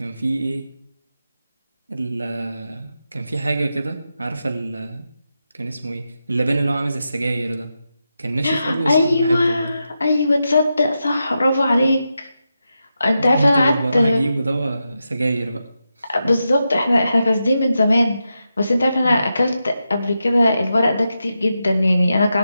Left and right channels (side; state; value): both; inverted; correlation -0.88